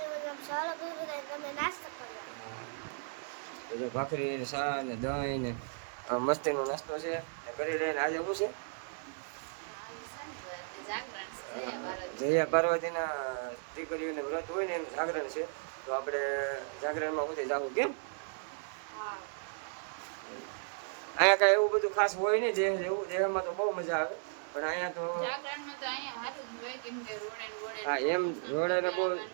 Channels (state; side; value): silent; left; digital silence